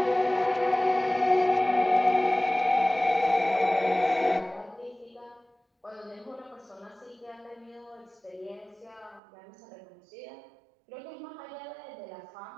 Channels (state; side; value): drops out; left; at 9.2 s